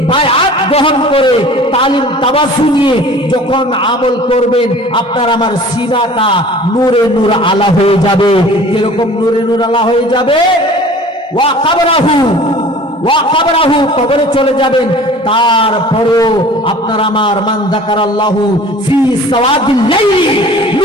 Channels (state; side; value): normal; both; correlation 0.45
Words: বায়আত গ্রহণ করে তালিম তাবাসসু নিয়ে যখন আমল করবেন, আপনার আমার সিনাটা নূরে নূর আলা হয়ে যাবে। কিরকম নূরে নূর আলা হয়ে যাবে? ওয়া কাবরাহু, কবরে চলে যাবেন, তারপরেও আপনার আমার মান যাকারাল্লাহু ফি সাওয়াদিল লাইলি